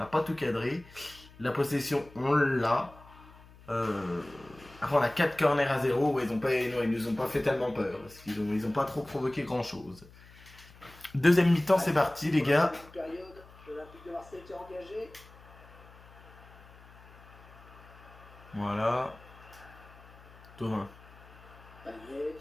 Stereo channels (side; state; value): left; noise; hum, 22 dB below the sound